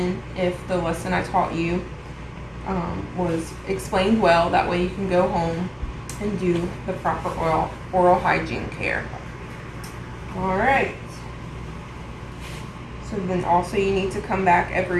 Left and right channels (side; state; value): both; identical; correlation 1.00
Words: if the lesson I taught you was explained well. That way you can go home and do the proper oral hygiene care. Alright. So then also you need to come back